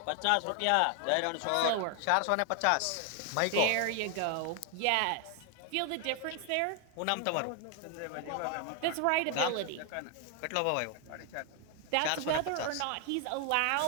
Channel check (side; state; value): both; different; correlation 0.00